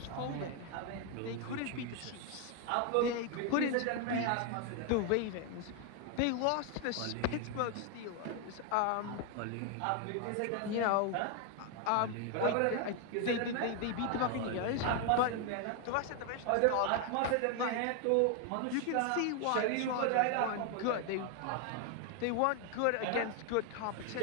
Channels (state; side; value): different; both; correlation 0.01